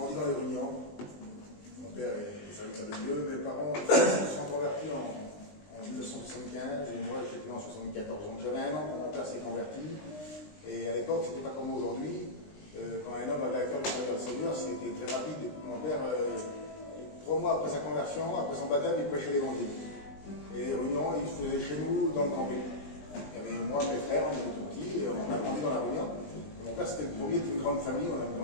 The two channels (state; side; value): late; right; 20 ms